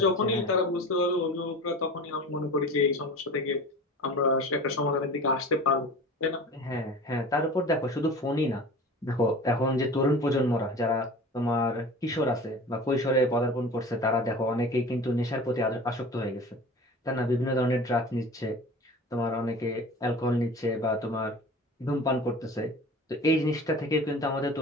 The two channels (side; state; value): both; normal; correlation 0.38